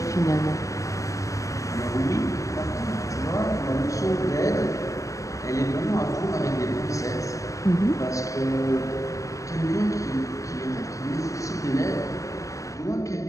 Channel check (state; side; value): late; right; 0.16 ms